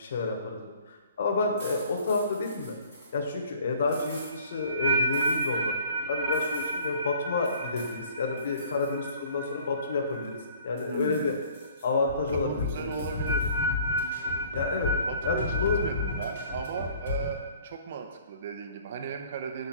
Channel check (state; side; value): inverted; both; correlation -0.53